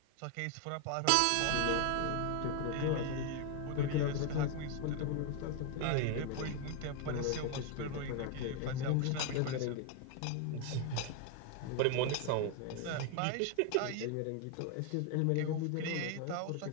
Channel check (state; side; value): different; both; correlation 0.01